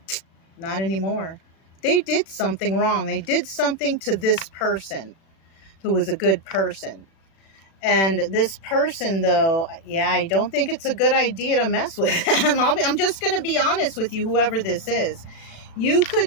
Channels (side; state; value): right; late; 36 ms